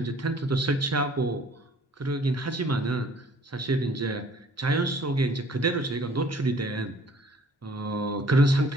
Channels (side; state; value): both; normal; correlation 0.55